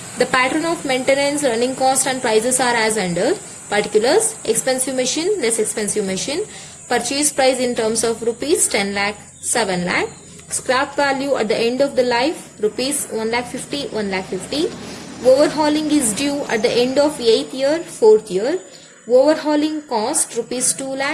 The pattern of maintenance, running cost and prices are as under. Particulars: expensive machine, less expensive machine. Purchase price in terms of rupees 10 lakh, 7 lakh. Scrap value at the end of the life, rupees 1 lakh 50, 1 lakh 50. Overhauling is due at the end of 8th year, 4th year. Overhauling cost rupees 2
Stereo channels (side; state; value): both; identical; correlation 1.00